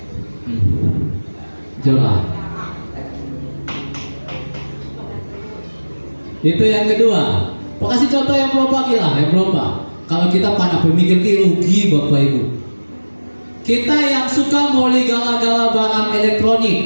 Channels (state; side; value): inverted; both; correlation -1.00